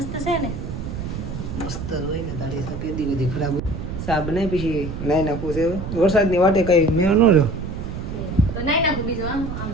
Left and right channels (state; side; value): noise; right; rumble, 6 dB below the sound